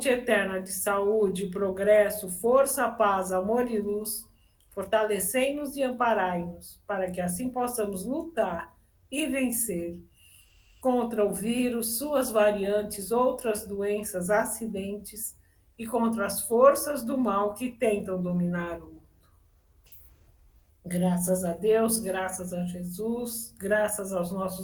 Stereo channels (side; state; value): both; identical; correlation 1.00